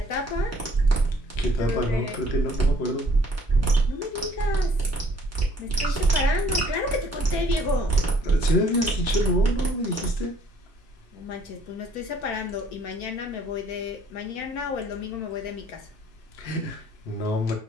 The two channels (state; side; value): normal; both; correlation 0.60